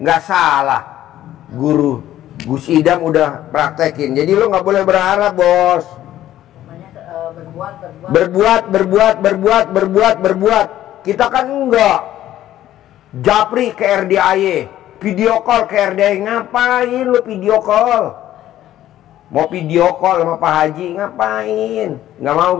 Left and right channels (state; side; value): quieter; right; 13.0 dB